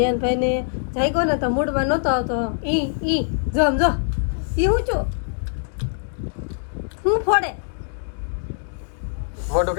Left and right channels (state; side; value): silent; right; digital silence